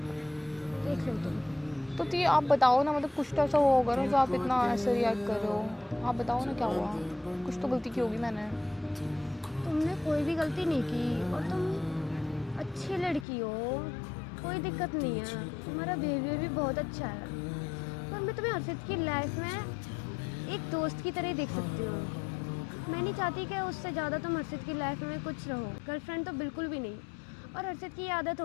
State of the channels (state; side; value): drops out; right; at 13.2 s